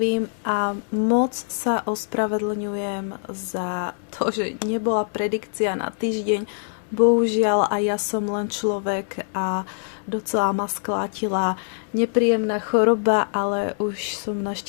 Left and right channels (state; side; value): silent; right; digital silence